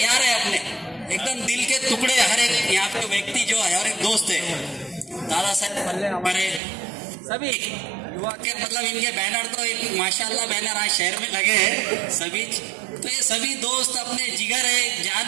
है अपने, एकदम दिल के टुकड़े। हर एक यहाँ पे व्यक्ति जो है, हर एक दोस्त है। दादा साहब हमारे सभी युवा के, मतलब इनके बैनर तो एक माशाल्लाह बैनर आज शहर में लगे हैं सभी। तो ये सभी दोस्त अपने जिगर है, जान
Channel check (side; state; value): left; drops out; at 6.6 s